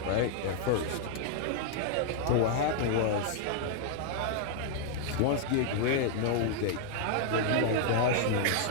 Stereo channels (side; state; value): both; different; correlation -0.01